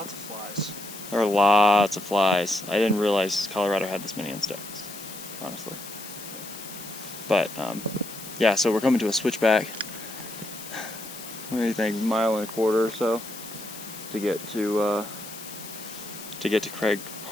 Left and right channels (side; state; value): left; noise; hiss, 13 dB below the sound